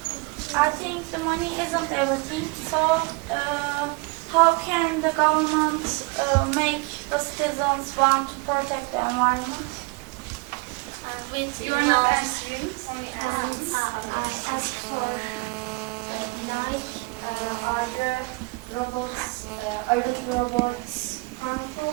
think the money isn't everything, so how can the government make the citizens want to protect the environment? And with You are not answering. Only As for are the robots, are the robots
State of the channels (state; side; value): quieter; left; 27.5 dB